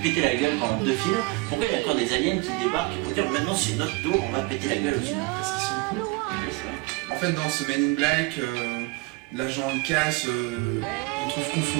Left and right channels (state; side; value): quieter; left; 24.7 dB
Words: la gueule pendant 2 films? Pourquoi il y a encore des aliens qui débarquent pour dire maintenant c'est notre tour, on va péter la gueule aux humains? Parce qu'ils sont cons. Oui, c'est vrai. En fait, dans ce Men in Black, l'agent Cass on trouve